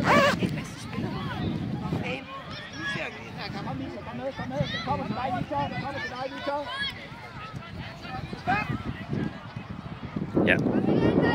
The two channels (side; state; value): both; identical; correlation 1.00